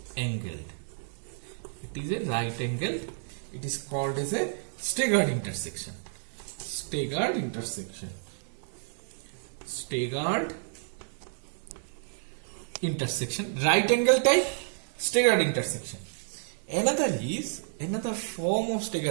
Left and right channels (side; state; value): left; silent; digital silence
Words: angled. It is called as a staggered intersection. Staggered intersection. Right angle type staggered intersection. Another form of